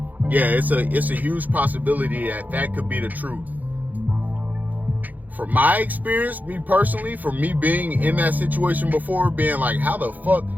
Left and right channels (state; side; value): late; left; 0.082 ms